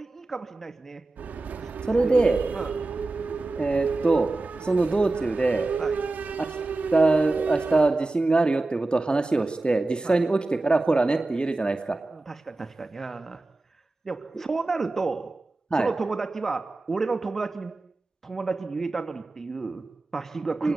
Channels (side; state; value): left; quieter; 3.1 dB